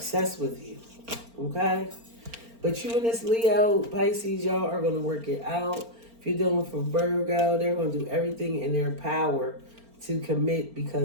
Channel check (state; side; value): late; left; 4.4 ms